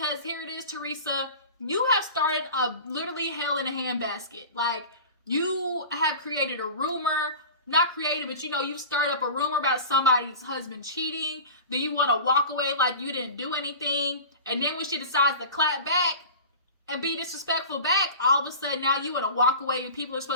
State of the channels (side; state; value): both; inverted; correlation -0.35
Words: here it is, Teresa, you have started a literally hell in a handbasket. You have created a rumor, not created, but you've stirred up a rumor about somebody's husband cheating. Then you want to walk away like you didn't do anything. And then when she decides to clap back and be disrespectful back, all of a sudden now you want to walk away and people are